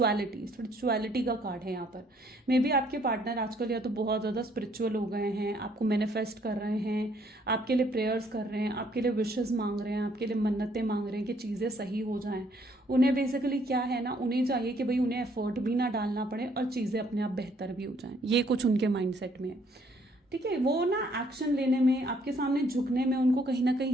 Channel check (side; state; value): both; normal; correlation 0.65